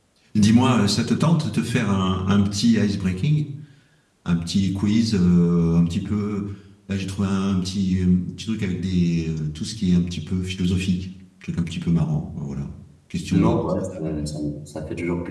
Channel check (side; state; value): both; identical; correlation 1.00